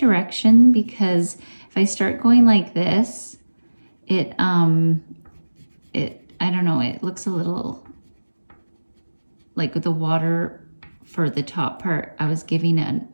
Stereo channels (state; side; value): inverted; both; correlation -1.00